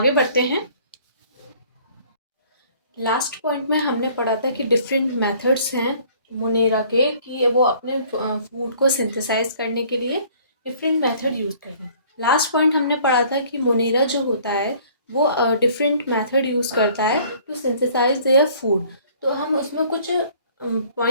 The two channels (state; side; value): inverted; both; correlation -0.55